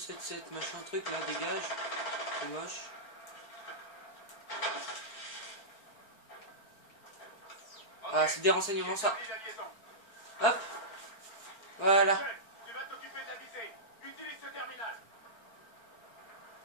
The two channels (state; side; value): late; right; 4.4 ms